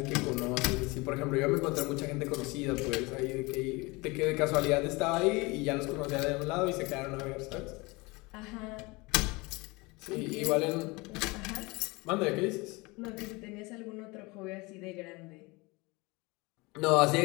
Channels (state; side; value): quieter; right; 24.8 dB